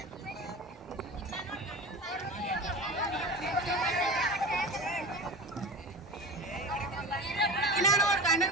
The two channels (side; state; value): both; normal; correlation 0.31